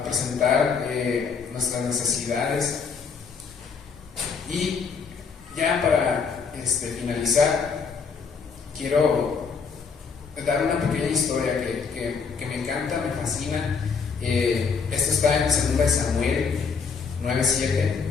presentar nuestras necesidades. Y ya para finalizar, quiero dar una pequeña historia que me encanta, me fascina. Esto está en 2 Samuel 9:7.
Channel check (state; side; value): quieter; right; 5.6 dB